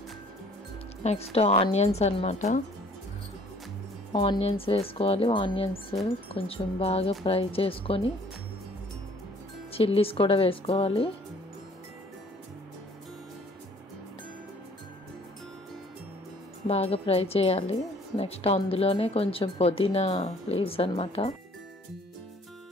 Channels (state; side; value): normal; both; correlation 0.56